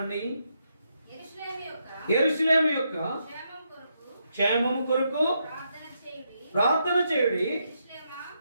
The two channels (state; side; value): inverted; both; correlation -0.80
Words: యెరూషలేము యొక్క క్షేమము కొరకు ప్రార్థన చేయుడి.